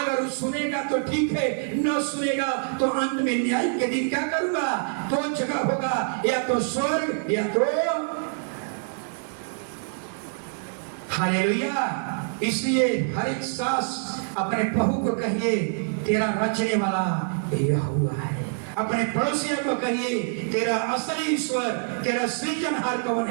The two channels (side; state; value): left; silent; digital silence